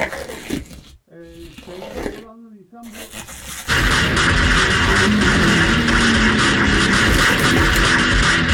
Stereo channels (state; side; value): identical; both; correlation 1.00